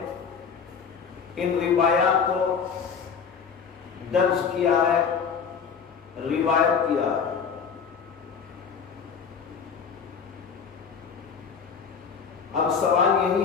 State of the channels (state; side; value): quieter; right; 6.4 dB